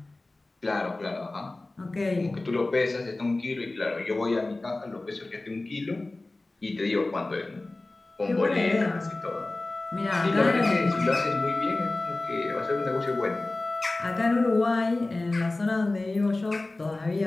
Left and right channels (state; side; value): quieter; right; 3.0 dB